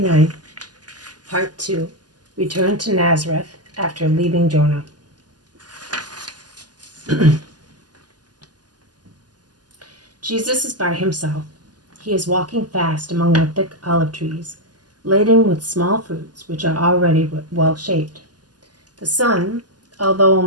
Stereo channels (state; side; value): late; left; 0.70 ms